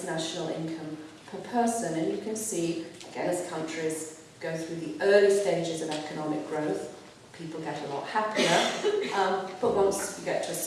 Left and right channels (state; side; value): identical; both; correlation 1.00